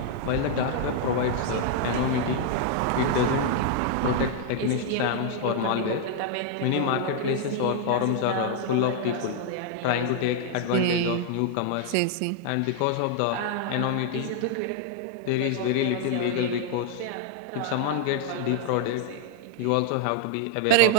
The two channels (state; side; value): different; both; correlation 0.00